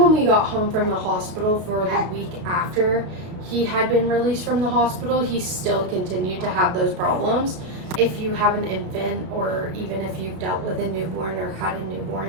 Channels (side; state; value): left; late; 33 ms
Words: we got home from the hospital for the week after he had been released from the hospital, he still continued to have those problems. If you have an infant, or even if you've dealt with a newborn or had a